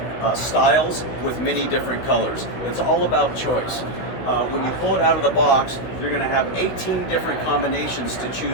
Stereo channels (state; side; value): late; right; 16 ms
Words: styles with many different colors. It's all about choice. When you pull it out of the box, you're going to have 18 different combinations to